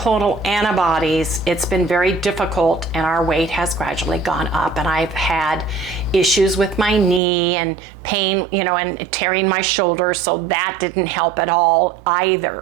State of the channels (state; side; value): drops out; left; at 7.2 s